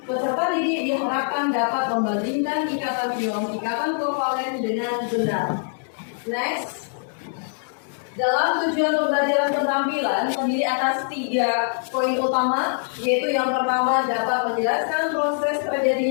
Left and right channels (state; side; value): silent; right; digital silence